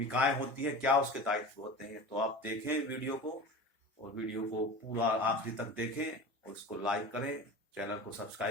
होती है, क्या उसके दायित्व होते हैं। तो आप देखें वीडियो को और वीडियो को पूरा आखिरी तक देखें और उसको लाइक करें, चैनल को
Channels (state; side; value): normal; both; correlation 0.33